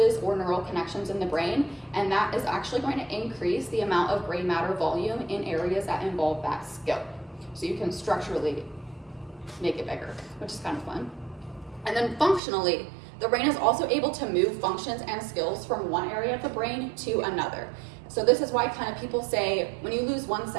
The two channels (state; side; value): drops out; left; at 12.4 s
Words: or neural connections in the brain, and that is actually going to increase the amount of gray matter volume in areas that involve that skill. So you can structurally make it bigger, which is kind of fun. And then functionally, the brain is also able to move functions and skills from one area of the brain to another. So this is why kind of people say, when you lose one